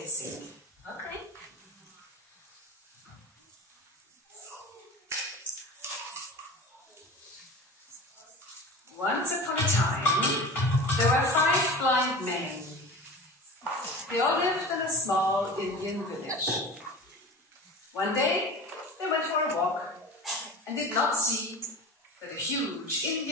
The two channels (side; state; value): both; normal; correlation 0.34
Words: Okay. Once upon a time, there were 5 blind men. They all lived in a small Indian village. One day, they went for a walk and did not see that a huge